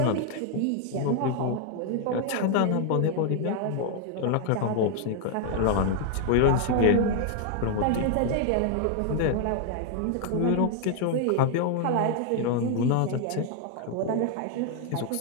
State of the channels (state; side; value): different; both; correlation 0.00